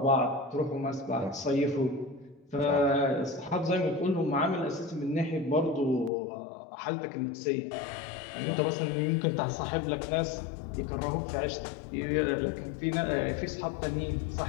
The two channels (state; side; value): drops out; right; at 6.1 s